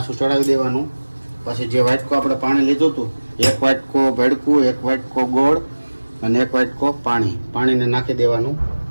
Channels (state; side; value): inverted; both; correlation -1.00